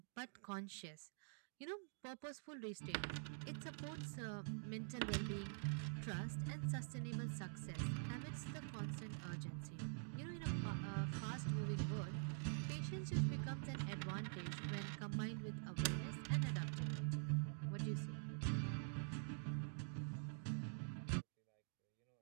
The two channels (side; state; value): left; silent; digital silence